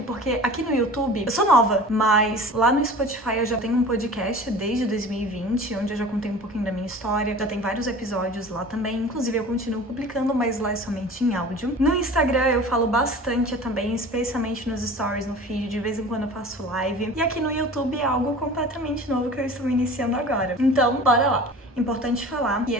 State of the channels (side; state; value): both; normal; correlation 0.40